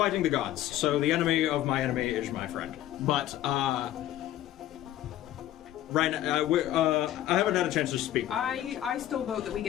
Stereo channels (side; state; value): right; quieter; 13.3 dB